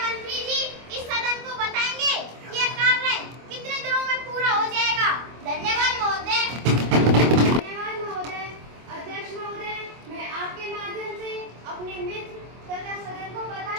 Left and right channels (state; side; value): late; left; 25 ms